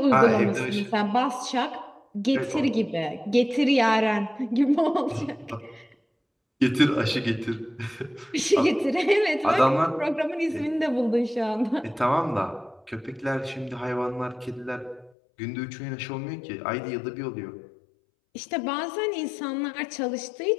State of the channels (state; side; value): drops out; right; at 15.1 s